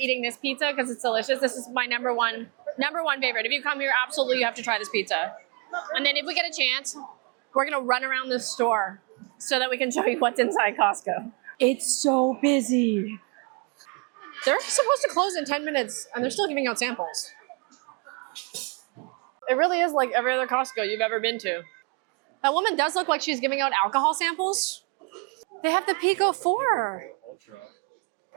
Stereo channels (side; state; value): left; quieter; 34.2 dB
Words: this pizza because it's delicious. This is my number one favorite. If you come here, absolutely you have to try this pizza. And then if we get a chance, we're gonna run around the store so that we can show you what's inside Costco. It's so busy. They're supposed to close in 10 minutes and they're still giving out samples. It really is like every other Costco you've ever been to. That woman does look like she's giving out alcohol samples. They have the Pico 4. You got the Pico 4 Ultra.